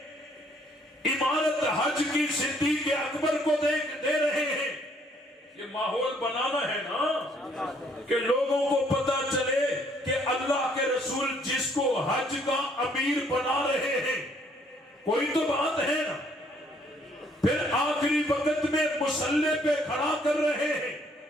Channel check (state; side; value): normal; both; correlation 0.65